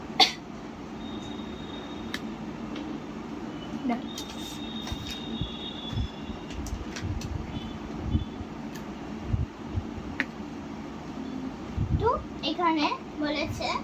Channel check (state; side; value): identical; both; correlation 1.00